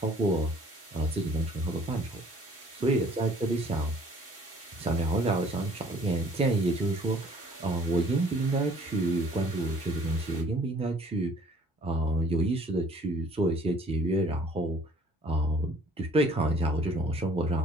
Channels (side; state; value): both; normal; correlation 0.56